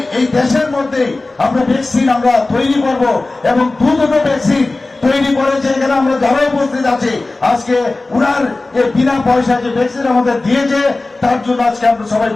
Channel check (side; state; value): right; quieter; 3.2 dB